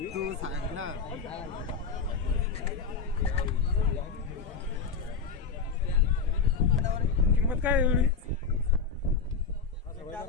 तू सांग ना. किंमत काय आहे एवढी?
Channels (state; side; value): quieter; right; 5.3 dB